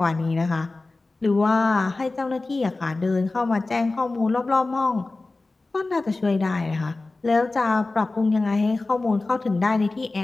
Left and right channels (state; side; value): quieter; right; 3.3 dB